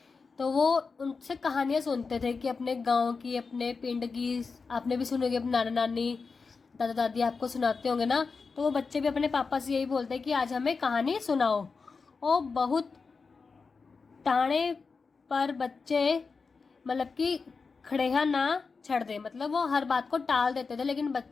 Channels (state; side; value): quieter; right; 4.7 dB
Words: तो वो उनसे कहानियाँ सुनते थे कि अपने गांव की, अपने पिंड की। आपने भी सुनी होगी, अपने नाना नानी दादा दादी आपको सुनाते होंगे ना। तो वो बच्चे भी अपने पापा से यही बोलते हैं कि आज हमें कहानी सुनाओ। और बहुत टाणे पर बच्चे मतलब कि खड़ेहा ना छड़ दे, मतलब वो हर बात को टाल देते थे, लेकिन